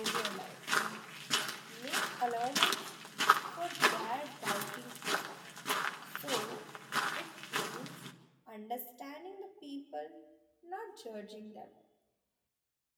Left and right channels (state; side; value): identical; both; correlation 1.00